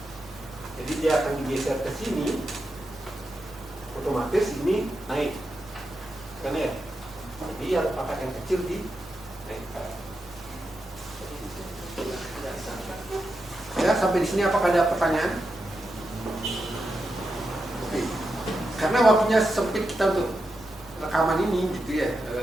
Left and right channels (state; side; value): normal; both; correlation 0.87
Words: Jadi dia akan digeser ke sini, otomatis ini naik, kan ya. Jadi yang pangkat yang kecil dinaikkan. Ya, sampai di sini apakah ada pertanyaan? Oke. Karena waktunya sempit kita untuk rekaman ini gitu ya.